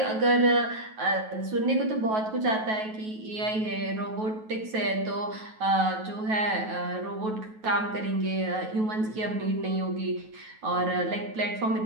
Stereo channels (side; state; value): left; late; 9.3 ms